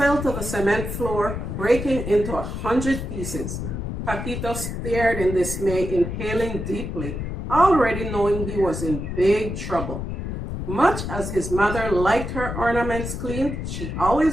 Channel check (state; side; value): noise; left; rumble, 5 dB below the sound